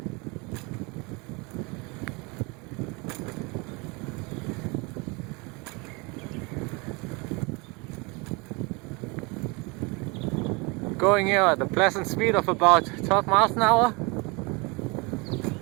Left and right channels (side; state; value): left; quieter; 28.5 dB